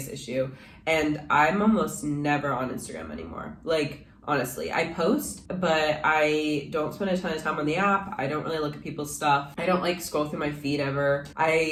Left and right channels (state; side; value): identical; both; correlation 1.00